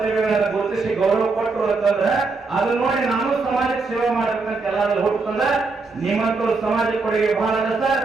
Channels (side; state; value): left; quieter; 4.0 dB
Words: ಗುರುತಿಸಿ ಗೌರವ ಕೊಟ್ಟರು ಅಂತಂದ್ರ ಅದನ್ನ ನೋಡಿ ನಾನು ಸಮಾಜಕ್ಕೆ ಸೇವೆ ಮಾಡ್ಬೇಕಂತ ಎಲ್ಲಾದ್ರೂ ಹುಟ್ಟಂದ್ರ ನಿಮ್ಮಂತವ್ರು ಸಮಾಜಕ್ಕೆ ಕೊಡುಗೆ ಬಹಳ ಅದ ಸರ್.